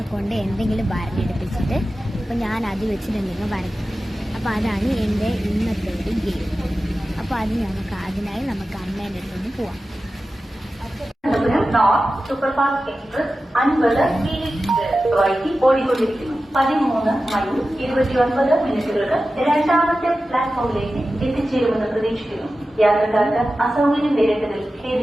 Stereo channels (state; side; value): normal; both; correlation 0.94